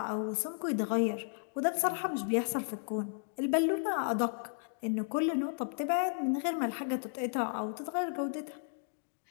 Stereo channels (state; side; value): silent; right; digital silence